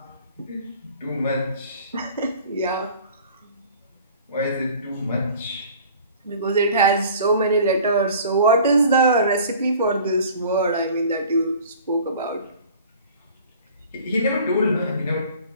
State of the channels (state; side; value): inverted; both; correlation -0.47